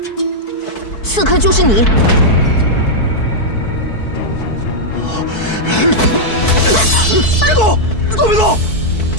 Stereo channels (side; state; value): right; late; 4.6 ms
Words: 刺客就是你。别动！都别动！